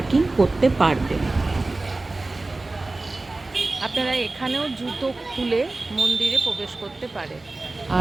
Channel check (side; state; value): left; quieter; 3.1 dB